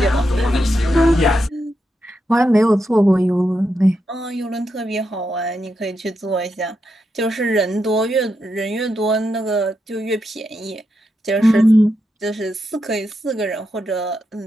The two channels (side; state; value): both; normal; correlation 0.84